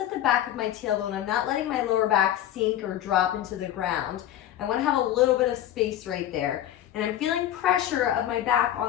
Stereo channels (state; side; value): quieter; right; 12.0 dB